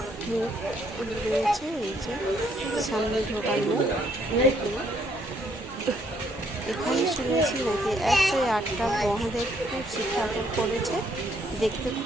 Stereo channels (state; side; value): normal; both; correlation 0.69